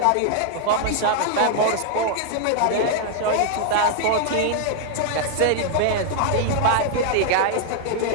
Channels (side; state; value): both; different; correlation 0.00